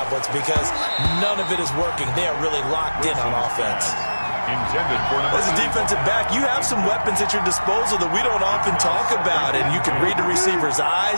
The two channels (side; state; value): both; inverted; correlation -1.00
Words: because none of it is working. They are really locked in on offense. Intended for As a defensive back, you have some weapons at your disposal that we don't often talk about. And you can read the receiver's